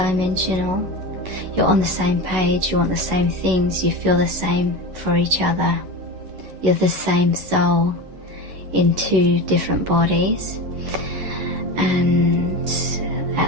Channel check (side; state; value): left; late; 11 ms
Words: You're on the same page, you want the same things, you feel the same for each other. You're the same soul in two different bodies. And